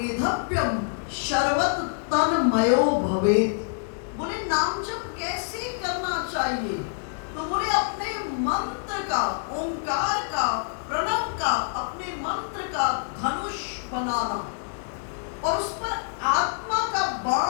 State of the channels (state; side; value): silent; right; digital silence